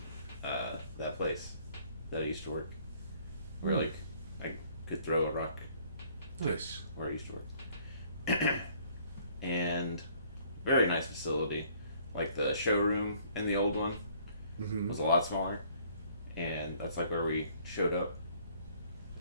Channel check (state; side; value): inverted; both; correlation -0.59